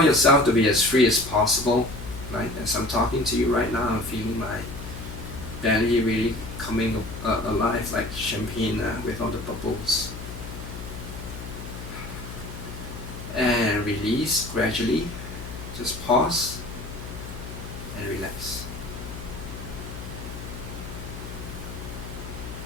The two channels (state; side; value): noise; left; hum, 10 dB below the sound